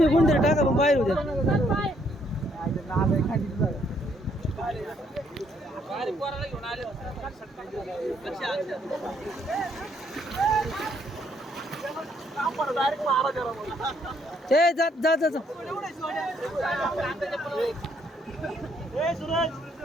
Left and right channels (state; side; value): normal; both; correlation 0.70